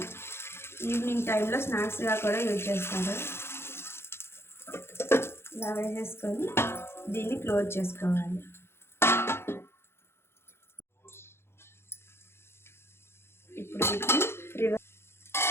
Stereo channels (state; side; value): late; right; 0.12 ms